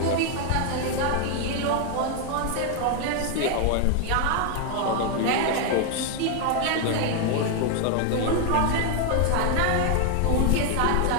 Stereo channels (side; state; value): both; different; correlation 0.00